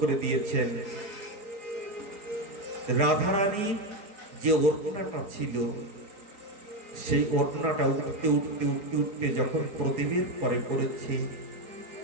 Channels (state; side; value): late; left; 4.7 ms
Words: করে দিয়েছেন। রাধারানীর যে ওড়নাটা ছিল, সেই ওড়নাটা উঠতে উঠতে উঠতে উঠতে যখন প্রদীপের পরে পড়েছে,